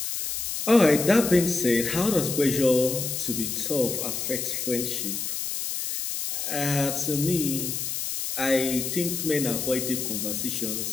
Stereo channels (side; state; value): left; noise; hiss, 3 dB below the sound